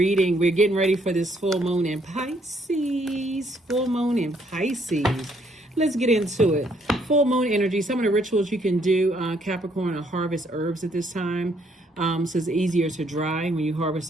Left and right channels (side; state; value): both; normal; correlation 0.69